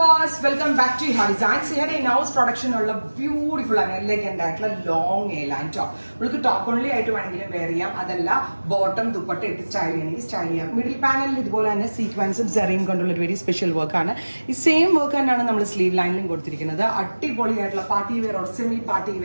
viewers, welcome back to Iha Designs. Here in-house production ഉള്ള beautiful and elegant ആയിട്ടുള്ള long A-line top. നമുക്ക് top only ആയിട്ട് വേണമെങ്കിലും wear ചെയ്യാം. അതല്ല bottom ദുപ്പട്ട ഇട്ട് സ്റ്റൈൽ ചെയ്യണമെങ്കിൽ സ്റ്റൈൽ ചെയ്യാം. മിഡിൽ പാനലിൽ ഇതുപോലെ തന്നെ സീക്വൻസും സെറിയും കൊണ്ടുള്ള ഒരു വെരി സ്പെഷ്യൽ വർക്ക് ആണ്. ഈ സെയിം വർക്ക് തന്നെയാണ് നമ്മൾ സ്ലീവ് ലൈനിലും കൊടുത്തിരിക്കുന്നത്. അടിപൊളിയായിട്ടുള്ള party wear or semi party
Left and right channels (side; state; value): both; inverted; correlation -1.00